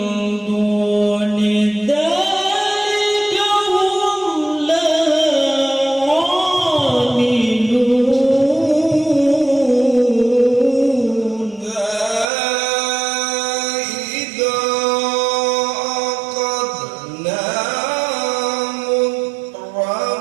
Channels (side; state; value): left; drops out; at 12.2 s